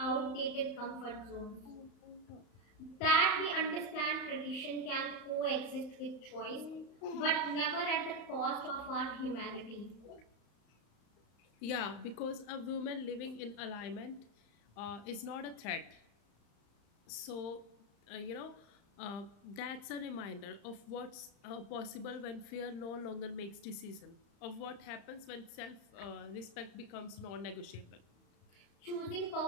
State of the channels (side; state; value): right; late; 35 ms